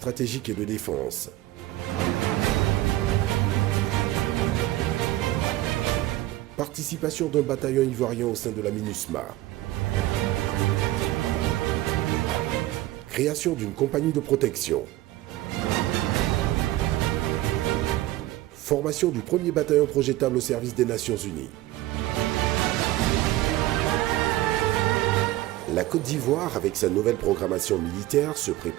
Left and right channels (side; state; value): left; quieter; 16.3 dB